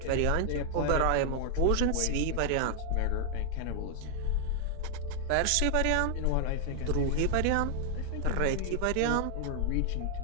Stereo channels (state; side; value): different; both; correlation 0.00